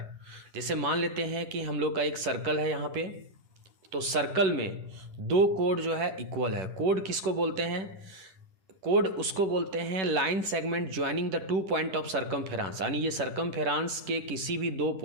जैसे मान लेते हैं कि हम लोग का एक सर्कल है यहाँ पे, तो सर्कल में दो कोड जो है इक्वल है। कोड किसको बोलते हैं? कोड उसको बोलते हैं line segment joining the two point of circumference, यानी ये सर्कमफेरेंस के किसी भी दो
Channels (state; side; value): late; left; 10 ms